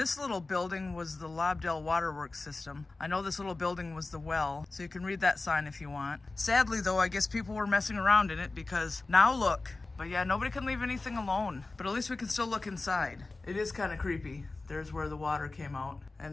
little building was the Lobdell Waterworks system. I know this little building was the well, so you can read that sign if you want. Sadly though, I guess people were messing around in it because now look. But yeah, nobody can leave anything alone. But at least we can still look inside. It is kind of creepy. There's where the water came out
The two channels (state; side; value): quieter; right; 3.4 dB